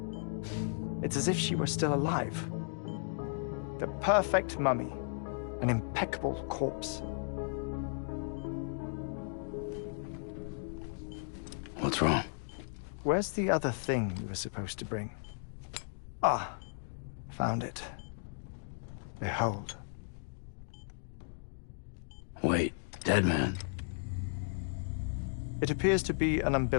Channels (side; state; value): right; silent; digital silence